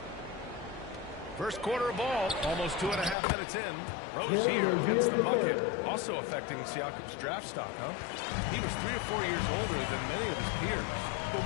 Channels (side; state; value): right; drops out; at 3.2 s